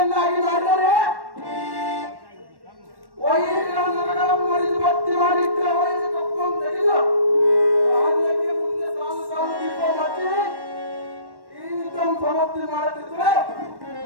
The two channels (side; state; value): left; late; 1.1 ms